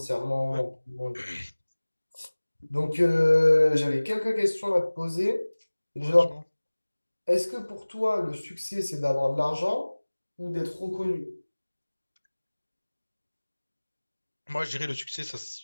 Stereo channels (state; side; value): inverted; both; correlation -1.00